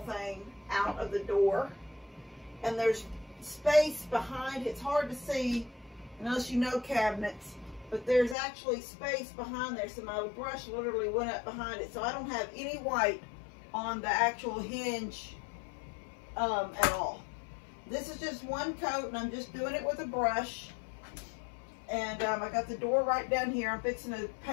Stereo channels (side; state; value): right; drops out; at 8.3 s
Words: thing out of the door. And there's space behind. It's hard to see unless you know cabinets. But there's actually space behind there. So my brush literally went up behind it. So I don't have any white on the actual hinge at all. This is just one coat and I'm just doing it with a brush. And I got the door right down here. I'm fixing to